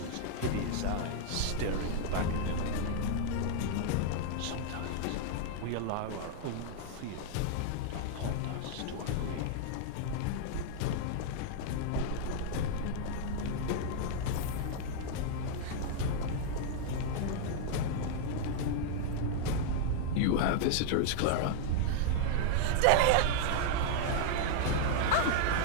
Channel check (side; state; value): both; different; correlation -0.01